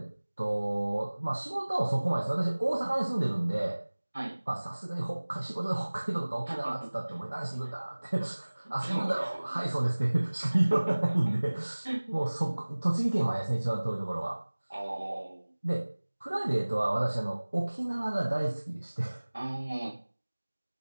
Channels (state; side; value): inverted; both; correlation -1.00